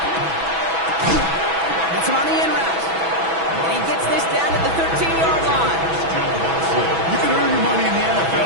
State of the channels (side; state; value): left; late; 6.1 ms